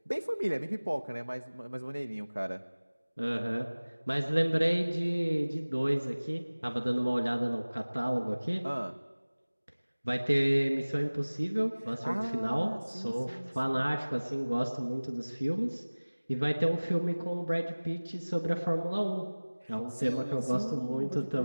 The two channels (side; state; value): both; inverted; correlation -1.00